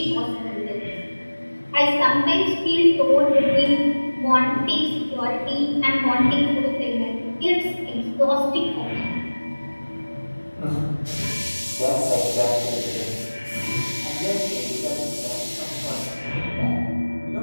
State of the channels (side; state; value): both; inverted; correlation -1.00